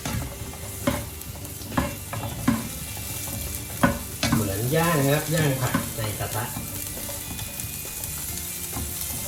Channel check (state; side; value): identical; both; correlation 1.00